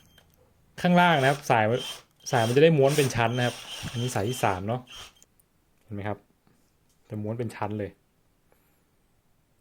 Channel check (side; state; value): both; identical; correlation 1.00